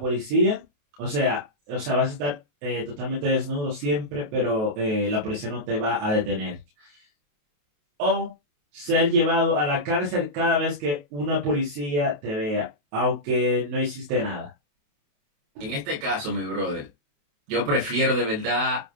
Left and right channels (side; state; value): left; late; 28 ms